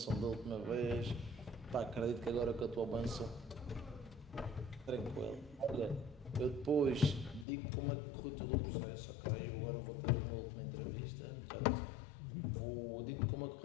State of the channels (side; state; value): right; drops out; at 7.5 s